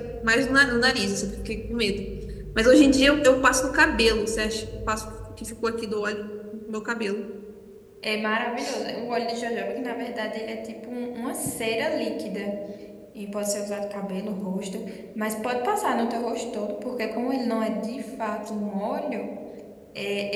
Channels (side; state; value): both; identical; correlation 1.00